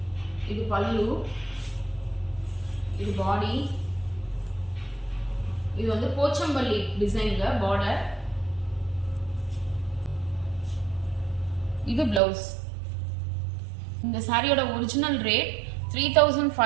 இது பல்லு, இது body. இது வந்து போச்சம்பள்ளி டிசைன்ல border. இது blouse. இந்த சாரியோட ஒரிஜினல் ரேட்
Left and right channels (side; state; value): left; drops out; at 12.2 s